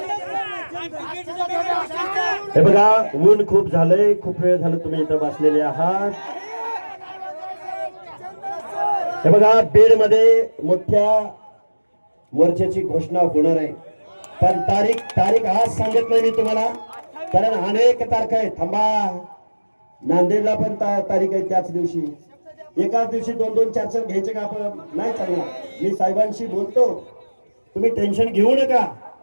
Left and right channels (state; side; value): inverted; both; correlation -1.00